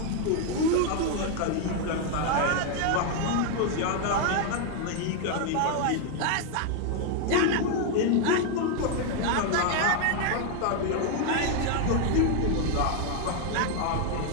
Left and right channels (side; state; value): both; different; correlation 0.01